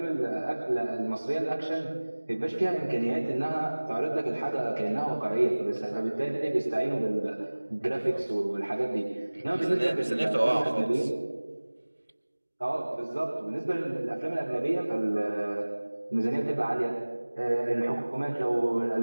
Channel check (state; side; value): inverted; both; correlation -1.00